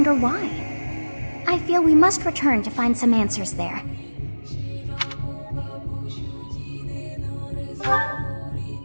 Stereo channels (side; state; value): both; inverted; correlation -1.00